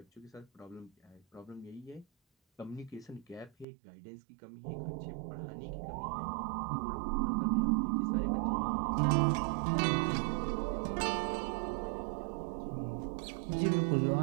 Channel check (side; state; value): left; drops out; at 3.7 s